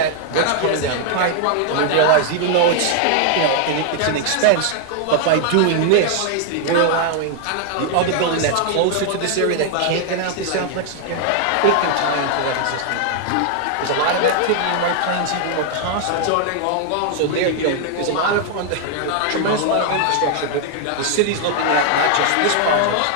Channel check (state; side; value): different; both; correlation 0.00